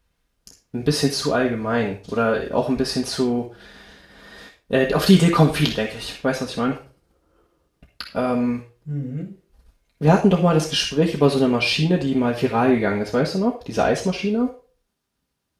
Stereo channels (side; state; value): both; identical; correlation 1.00